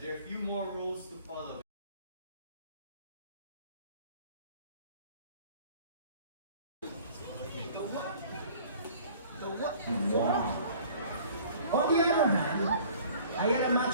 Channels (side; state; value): both; inverted; correlation -0.50